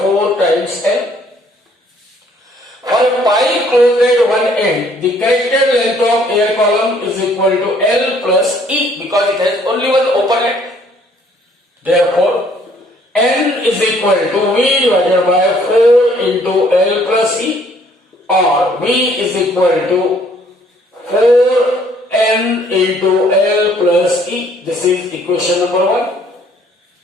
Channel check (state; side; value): normal; both; correlation 0.62